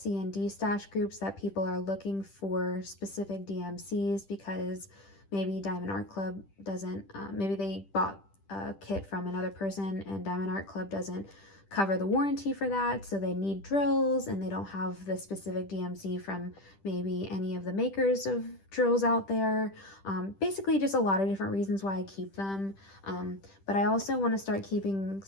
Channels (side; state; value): right; late; 10 ms